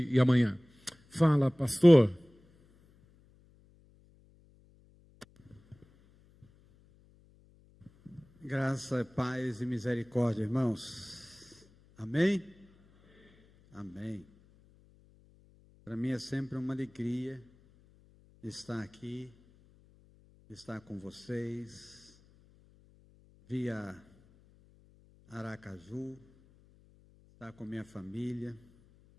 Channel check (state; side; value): noise; left; hum, 29 dB below the sound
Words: e amanhã. Fala, pastor. Graça, paz e misericórdia, irmãos. Amém? Amém. Para mim é sempre uma alegria estar aqui, estar com vocês, via Aracaju, estar com minha família.